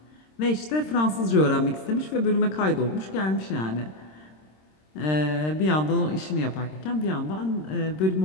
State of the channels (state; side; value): late; right; 26 ms